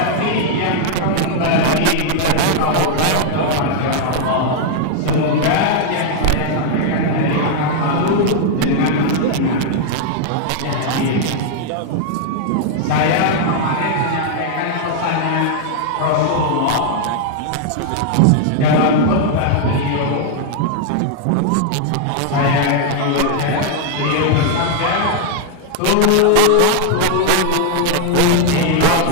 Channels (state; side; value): different; both; correlation 0.00